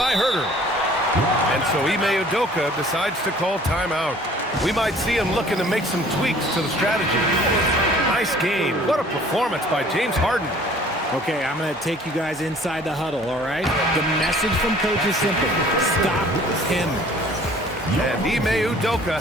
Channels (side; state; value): both; normal; correlation 0.53